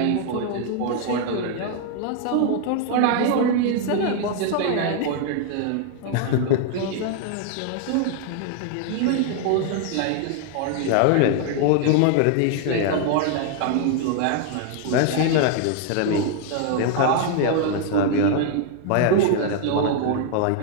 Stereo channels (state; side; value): different; both; correlation 0.00